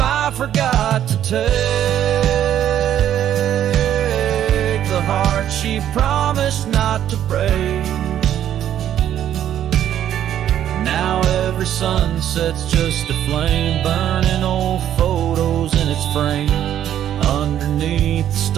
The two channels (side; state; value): left; quieter; 10.8 dB